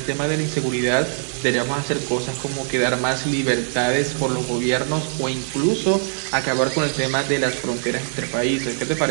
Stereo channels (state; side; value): silent; left; digital silence